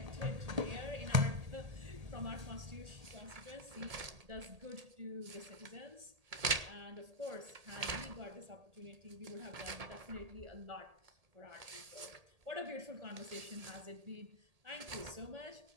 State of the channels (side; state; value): left; late; 1.8 ms